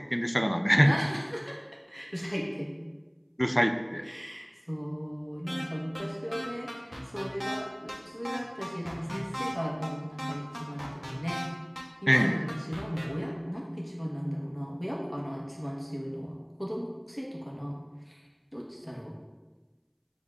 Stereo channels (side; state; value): both; identical; correlation 1.00